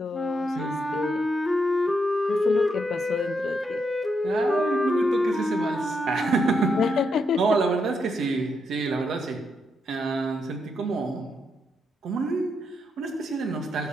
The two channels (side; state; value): both; normal; correlation 0.80